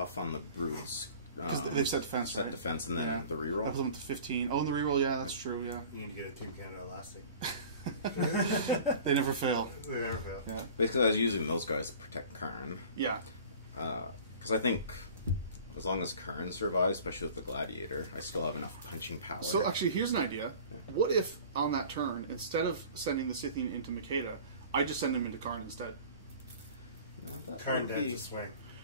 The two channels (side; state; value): both; inverted; correlation -0.43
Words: on the brutes. Because they've set defense, Set right? defense and then Yeah. the I reroll. put them to 15. Oh, and the reroll, yeah, that's true, yeah. You need to get a Team Canada elastic. They never fail. They never fail. Yeah. Basically, I was using those guys to protect Karn. Yeah. Because I think as long as Karn survives, especially with the Gladiator, I still have enough punching power. So actually, here's an idea. What if on that turn, instead of sending the Scythian into Makeda, I just send him into Karn instead? No, that Karn would dance be- a swing.